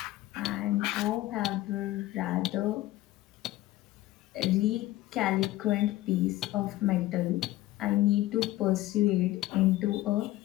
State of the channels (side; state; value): right; quieter; 16.2 dB